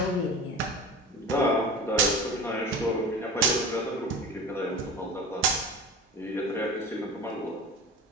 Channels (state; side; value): normal; both; correlation 0.34